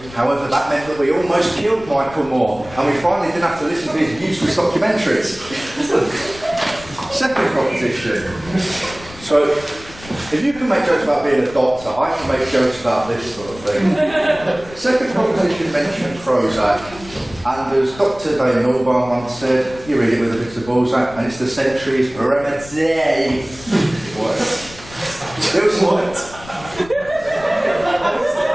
however, that meant that we almost killed Michael Moore, and we finally didn't have to listen to his useless documentaries. Second proposition. So, if you can make jokes about being a doctor, I can make jokes about this sort of thing. Second proposition mentioned Prozac, and as Dr. Dave Norbar once said, you read it with a bit of Balzac, and it's the century's remedy. What? It was what?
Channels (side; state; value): left; noise; rumble, 18 dB below the sound